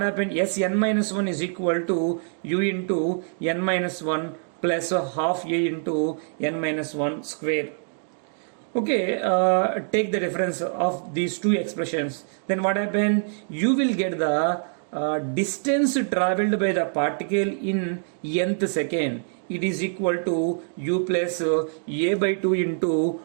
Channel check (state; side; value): silent; left; digital silence